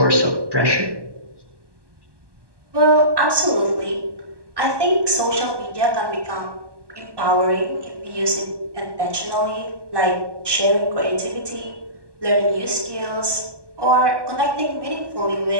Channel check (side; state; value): left; late; 1.2 ms